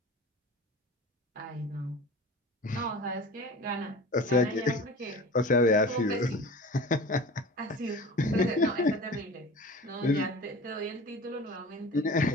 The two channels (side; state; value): both; normal; correlation 0.38